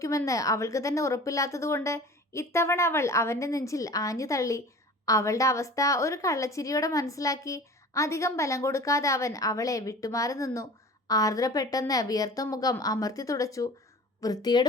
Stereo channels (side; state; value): both; normal; correlation 0.41